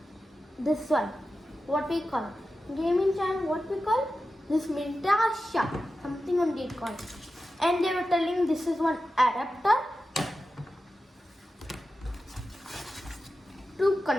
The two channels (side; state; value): both; normal; correlation 0.92